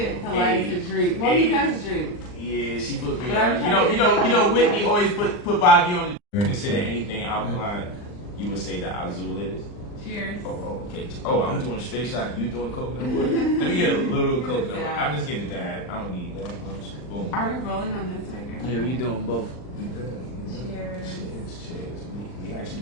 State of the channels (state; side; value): late; right; 39 ms